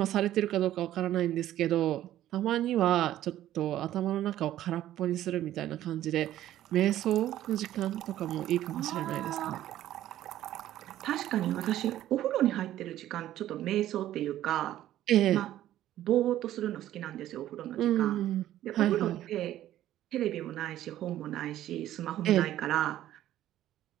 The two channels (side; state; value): left; quieter; 13.1 dB